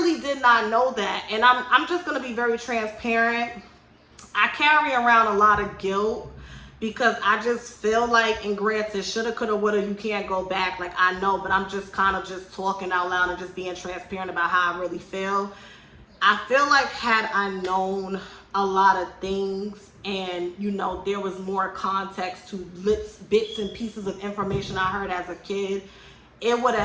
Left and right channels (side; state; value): both; identical; correlation 1.00